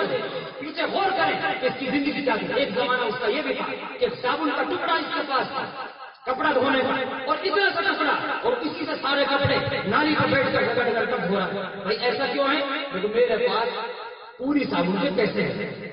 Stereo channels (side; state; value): both; identical; correlation 1.00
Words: پیچھے غور کریں کہ اس کی زندگی کیا تھی۔ ایک زمانہ اس کا یہ بھی تھا کہ صابن کا ٹکڑا اس کے پاس تھا کپڑا دھونے کا، اور اتنا سا ٹکڑا، اور اسی سے سارے کپڑے نالی پر بیٹھ کر رگڑ کر دھو رہا۔ بھائی ایسا کیوں ہے؟ کیونکہ میرے پاس پوری صابن کے پیسے ہیں،